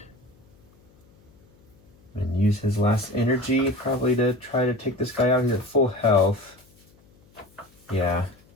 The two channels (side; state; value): left; noise; hum, 30 dB below the sound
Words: And use his last energy probably to try to take this guy out. He's at full health. Yeah.